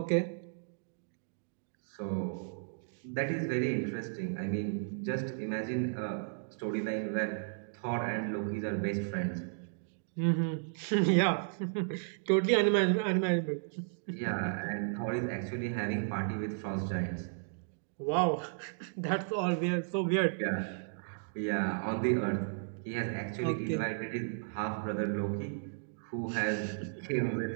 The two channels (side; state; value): left; silent; digital silence